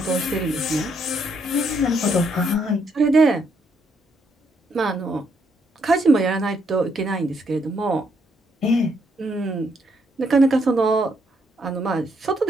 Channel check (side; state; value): both; normal; correlation 0.74